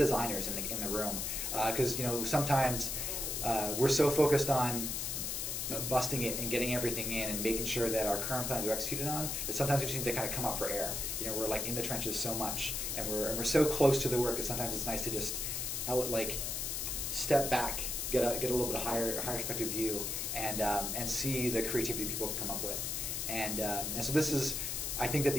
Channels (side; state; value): left; noise; hiss, 2 dB below the sound